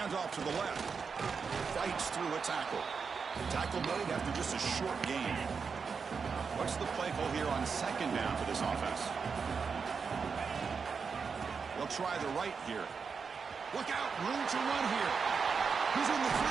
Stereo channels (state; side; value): quieter; left; 5.6 dB